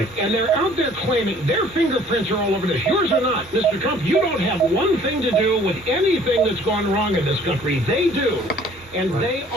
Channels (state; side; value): normal; both; correlation 0.55